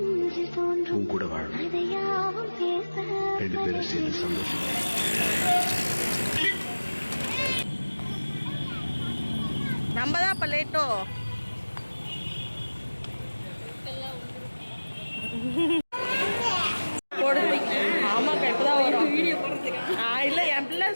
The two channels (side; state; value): both; inverted; correlation -1.00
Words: உன் கூட வாழும் 2 பேரும் சேர்ந்து சந்தோஷம். நம்ம தான் இப்போ லேட்டோ. ஆமாக்கா இப்போ தான் வரும் வீடியோ போடுறதுக்கு. இல்லை என் பிள்ளை